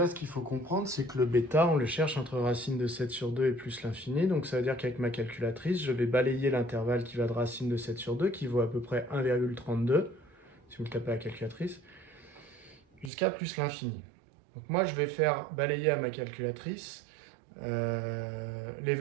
ce qu'il faut comprendre, c'est que le bêta, on le cherche entre racine de 7 sur 2 et plus l'infini. Donc ça veut dire qu'avec ma calculatrice, je vais balayer l'intervalle qui va de racine de 7 sur 2, qui vaut à peu près 1,32, si vous le tapez à la calculatrice, jusqu'à plus l'infini. Donc moi, je vais faire balayer à ma calculatrice les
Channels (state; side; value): drops out; left; at 13.1 s